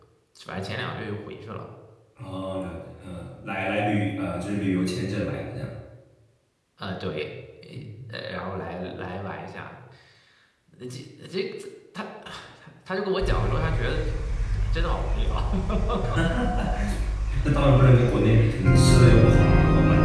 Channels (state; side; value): identical; both; correlation 1.00